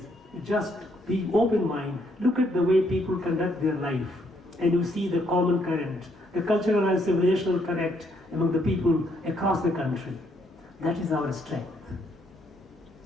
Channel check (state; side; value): normal; both; correlation 0.72